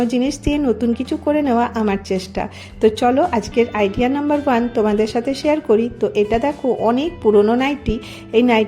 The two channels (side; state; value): both; identical; correlation 1.00